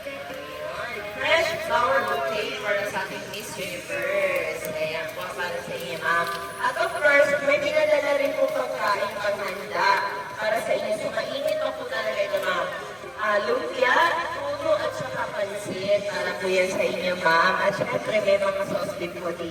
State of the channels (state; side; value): identical; both; correlation 1.00